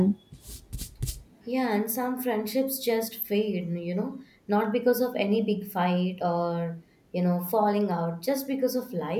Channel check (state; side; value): identical; both; correlation 1.00